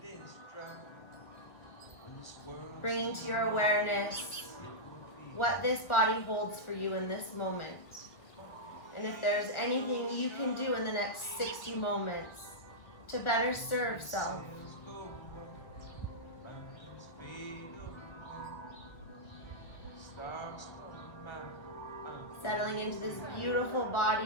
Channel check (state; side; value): late; right; 1.6 ms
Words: Bringing to your awareness what this body holds for you in this moment. And if there's anything you can do in the next 60 moments to better serve self. Settling into this beautiful